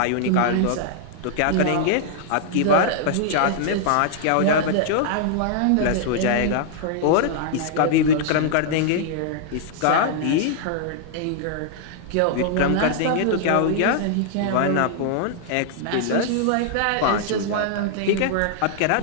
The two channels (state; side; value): different; both; correlation -0.01